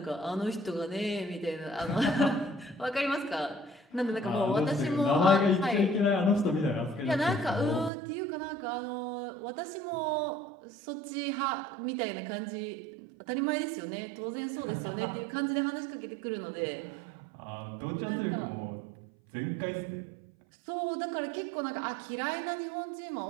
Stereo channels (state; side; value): drops out; left; at 7.9 s